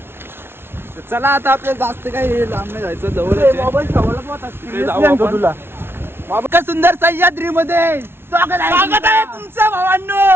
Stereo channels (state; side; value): late; left; 0.11 ms